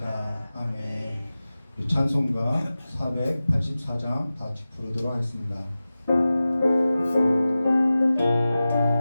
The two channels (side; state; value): both; inverted; correlation -0.95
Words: 아멘. 우리 찬송가 484장 다 같이 부르도록 하겠습니다.